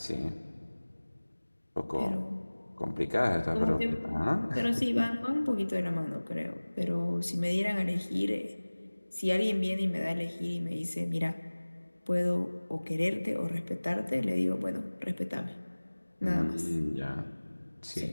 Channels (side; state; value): both; inverted; correlation -1.00